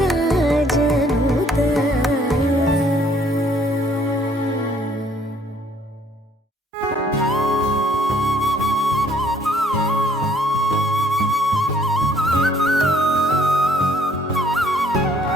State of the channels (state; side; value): normal; both; correlation 0.62